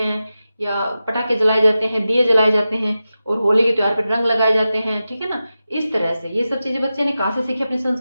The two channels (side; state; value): both; inverted; correlation -0.93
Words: या पटाखे जलाए जाते हैं, दिए जलाए जाते हैं, और होली के त्योहार पर रंग लगाए जाते हैं, ठीक है ना। इस तरह से ये सब चीजें बच्चे ने कहाँ से सीखी? अपनी